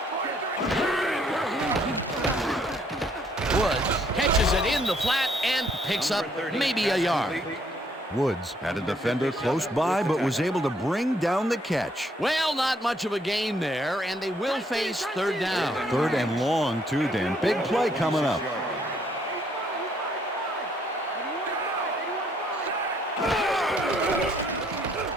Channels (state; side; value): normal; both; correlation 0.68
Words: Woods catches it in the flat and picks up maybe a yard. Woods had a defender close by, but was able to bring down the catch. Well, not much of a gain there, and they will face third down. 3rd and long, too, Dan. Big play coming up.